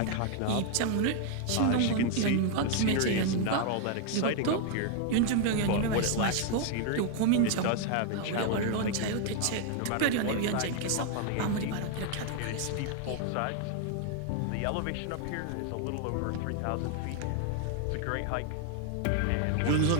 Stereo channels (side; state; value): both; different; correlation 0.00